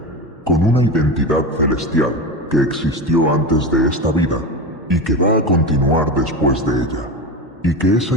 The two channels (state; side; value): normal; both; correlation 0.23